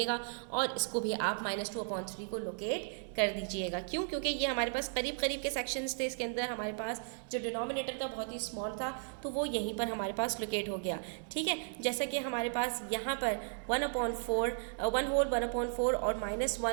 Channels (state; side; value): silent; left; digital silence